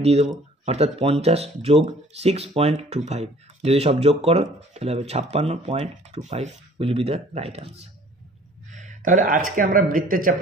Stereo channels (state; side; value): normal; both; correlation 0.52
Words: দিয়ে দেবো, অর্থাৎ 50 যোগ 6.25, যদি সব যোগ করো তাহলে হবে 56.25 will be the right answer. তাহলে আজকে আমরা বৃত্তের